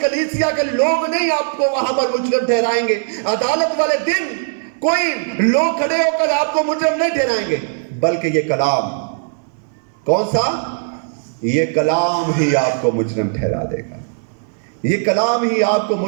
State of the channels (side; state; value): left; silent; 67 dB below the other